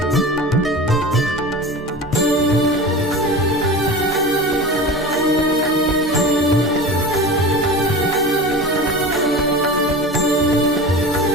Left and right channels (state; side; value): normal; both; correlation 0.32